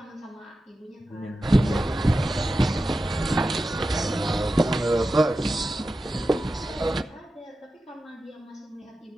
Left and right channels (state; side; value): normal; both; correlation 0.92